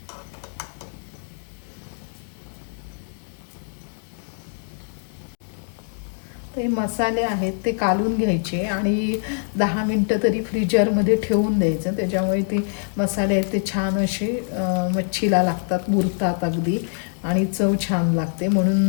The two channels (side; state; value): right; silent; 63 dB below the other